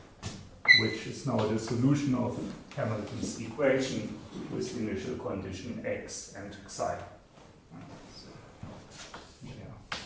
which is now the solution of Hamilton's equation with the initial condition x and psi.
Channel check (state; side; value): identical; both; correlation 1.00